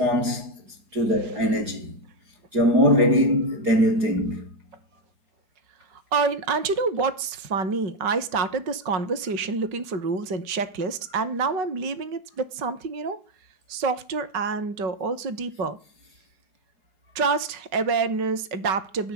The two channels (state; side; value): late; left; 5.3 ms